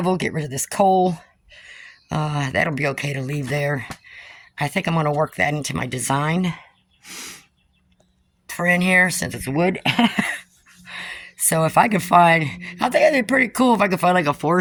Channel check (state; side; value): identical; both; correlation 1.00